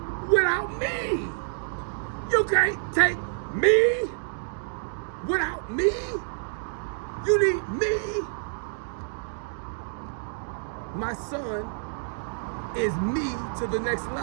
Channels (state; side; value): silent; left; digital silence